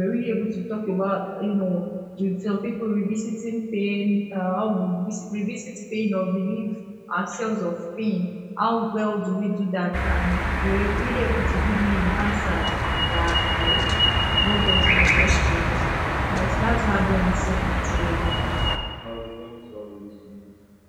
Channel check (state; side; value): identical; both; correlation 1.00